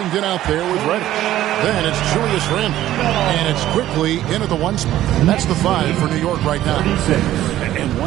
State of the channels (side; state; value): left; quieter; 13.5 dB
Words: out there with Reddish. Then it's Julius Randle. And it's quickly into the 1 spot. That's the 5 for New York right now. And